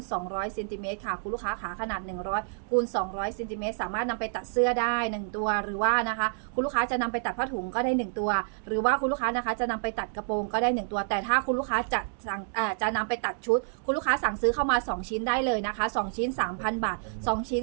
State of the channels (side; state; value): left; silent; digital silence